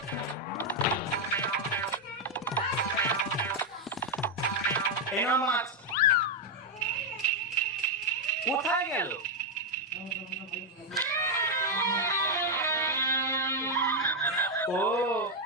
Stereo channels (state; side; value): normal; both; correlation 0.01